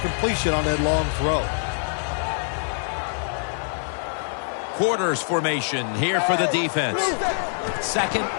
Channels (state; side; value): silent; right; digital silence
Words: on that long throw. Quarters formation here for the defense. Second